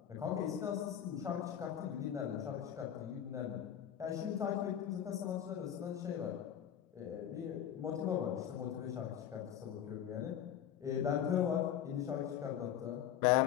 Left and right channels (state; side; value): quieter; right; 10.1 dB